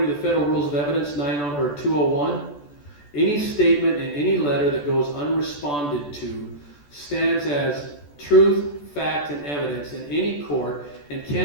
to the Federal Rules of Evidence 201, any statement in any letter that goes unresponded to stands as truth, fact, and evidence in any court and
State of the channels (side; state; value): right; late; 14 ms